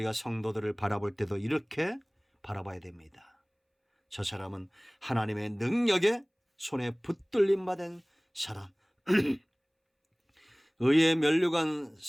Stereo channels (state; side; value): identical; both; correlation 1.00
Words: 성도들을 바라볼 때도 이렇게 바라봐야 됩니다. 저 사람은 하나님의 능력의 손에 붙들림 받은 사람. 의의 면류관,